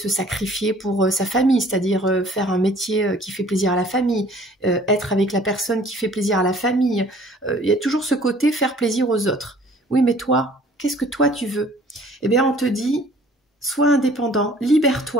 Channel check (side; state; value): both; normal; correlation 0.53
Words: sacrifier pour sa famille, c'est-à-dire faire un métier qui fait plaisir à la famille, être avec la personne qui fait plaisir à la famille. Il y a toujours ce côté faire plaisir aux autres. Oui, mais toi, qu'est-ce que toi tu veux? Eh bien, on te dit, sois indépendant,